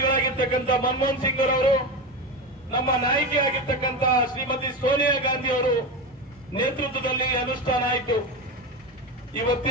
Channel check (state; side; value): normal; both; correlation 0.20